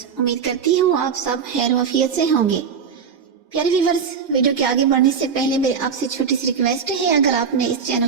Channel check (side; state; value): left; quieter; 6.4 dB